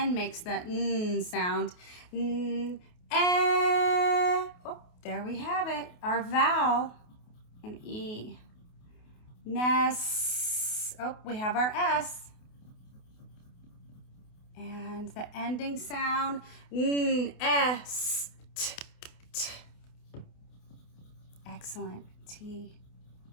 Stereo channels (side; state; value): right; late; 28 ms